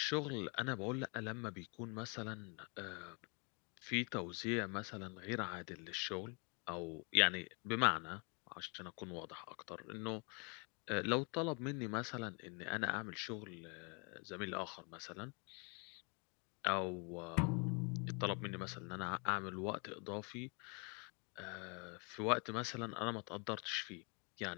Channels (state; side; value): quieter; right; 34.6 dB